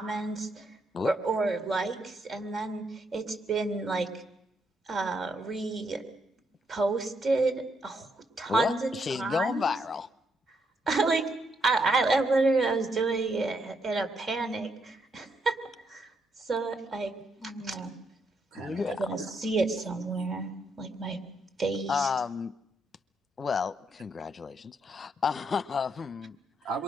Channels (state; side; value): normal; both; correlation 0.76